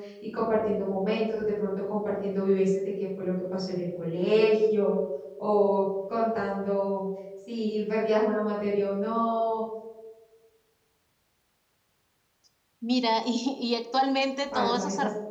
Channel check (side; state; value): both; identical; correlation 1.00